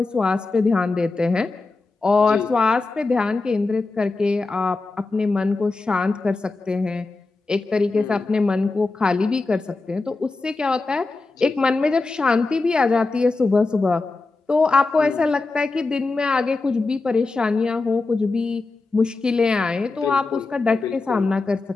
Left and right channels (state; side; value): quieter; right; 3.6 dB